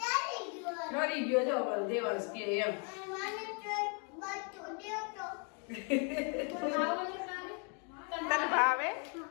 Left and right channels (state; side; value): quieter; right; 38.0 dB